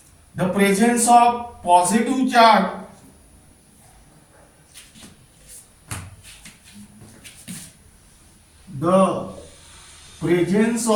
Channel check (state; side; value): identical; both; correlation 1.00